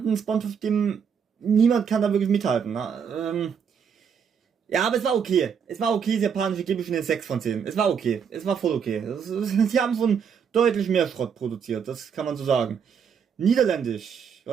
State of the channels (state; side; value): quieter; left; 7.0 dB